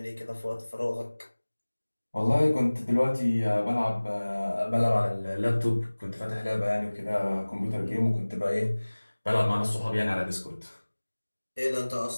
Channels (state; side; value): inverted; both; correlation -1.00